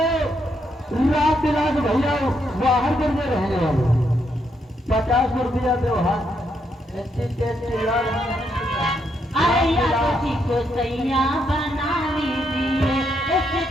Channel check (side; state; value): both; normal; correlation 0.77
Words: राम विलास भैया बाहर करके रहने वाले 50 रुपया व्यवहार। अरे यादव जी को सैया बना लीजिए,